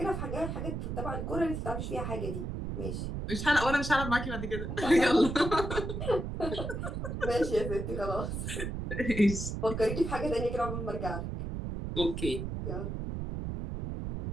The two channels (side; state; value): right; noise; rumble, 4 dB below the sound